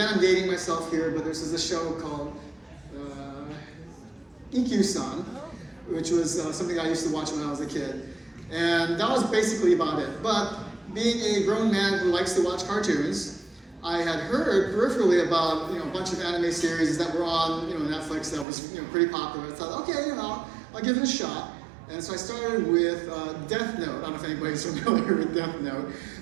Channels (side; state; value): left; drops out; at 18.4 s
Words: I'm dating myself here, but there's this show called EQ-san, which was something I used to watch when I was a kid. And that was basically about it. But being a grown man who likes to watch cartoons, I had heard peripherally about a bunch of anime series that were on Netflix that was pretty popular. I thought, okay, I'll give it a shot. And so I started with Death Note. I don't know if anybody's familiar with Death Note,